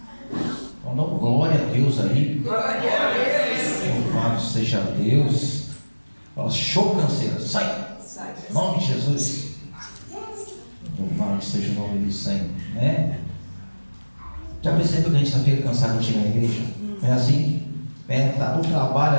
Então dá glória a Deus aí. Glória a Deus. Louvado seja Deus. Fala, show canseira, sai. Em nome de Jesus. Louvado seja o nome do Senhor, né? Já percebeu que a gente fica cansado de chegar na igreja? É assim? Tá no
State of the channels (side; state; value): both; inverted; correlation -1.00